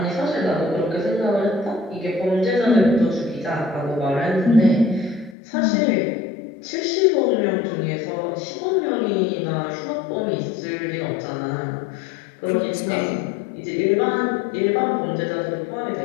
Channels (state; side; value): drops out; right; at 5.4 s